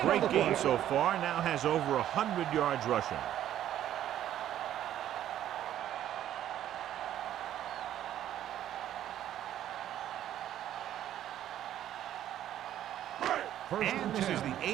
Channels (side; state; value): left; quieter; 11.7 dB